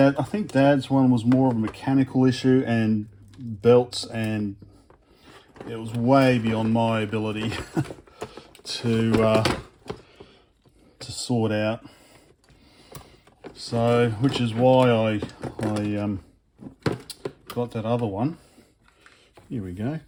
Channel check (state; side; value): identical; both; correlation 1.00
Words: I think Dad's one was more of a mechanical issue and belts, and it was way beyond my ability to sort out. So, which is why I got that other one. Here we go.